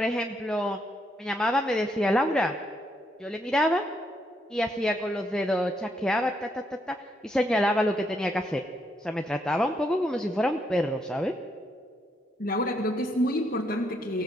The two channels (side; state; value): both; normal; correlation 0.76